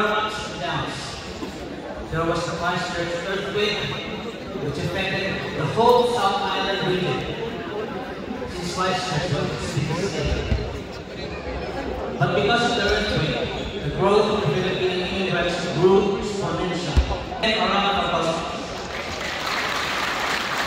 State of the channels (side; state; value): both; identical; correlation 1.00